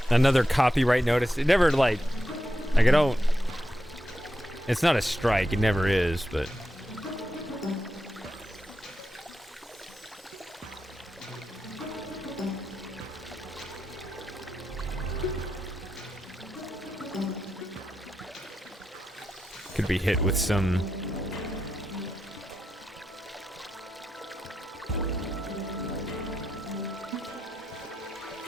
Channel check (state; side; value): normal; both; correlation 0.87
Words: another copyright notice? It never like I don't. It's not a strike. It never is, but. Could be hit with some.